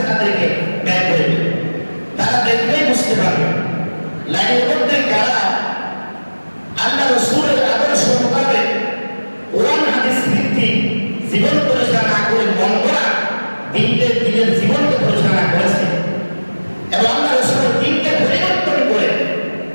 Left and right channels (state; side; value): inverted; both; correlation -1.00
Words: তাদেরকে ব্যয় করে দিবে। তারা দেখলেই বুঝতে পারবে লাইনের মধ্যে কারা আল্লাহ রাসূলের আদর্শ মোতাবেক কোরআন হাদিস ভিত্তিক জীবন পরিচালনা করে বন্ধরা দিনের জীবনকে পরিচালনা করেছে, এবং আল্লাহ রাসূলের দিনকে পরিবর্তন করে